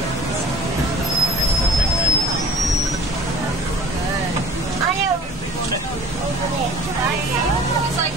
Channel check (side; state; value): both; normal; correlation 0.46